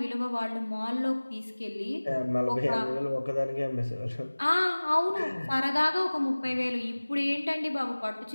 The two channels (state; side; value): inverted; both; correlation -1.00